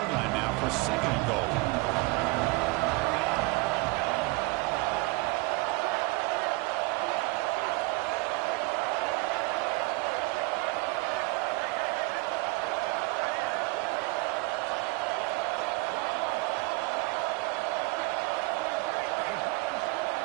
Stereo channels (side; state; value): left; quieter; 25.2 dB